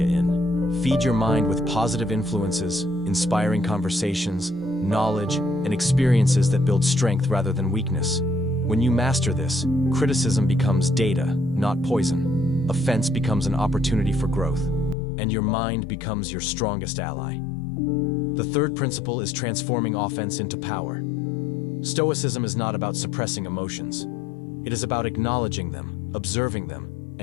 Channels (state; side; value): drops out; right; at 15.0 s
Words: in. Feed your mind with positive influences, inspiring conversations, knowledge, and experiences that build strength rather than weakness. When you master this, criticism becomes data, not poison. Offense becomes an opportunity for growth, and your mind becomes your strongest ally. The third principle is transforming offense into power. Stoicism is not about suppressing emotions. It is about acknowledging them, observing them,